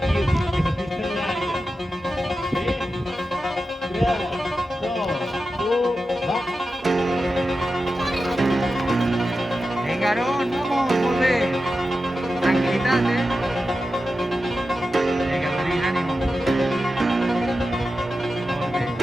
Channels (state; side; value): normal; both; correlation 0.92